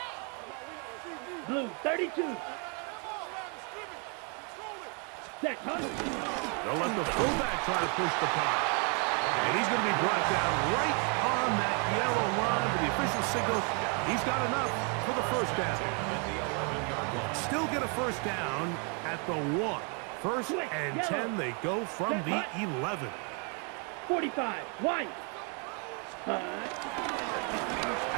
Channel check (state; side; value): quieter; left; 36.9 dB